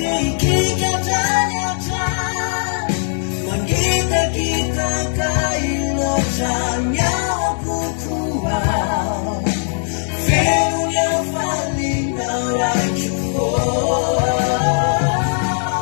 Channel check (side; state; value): right; silent; digital silence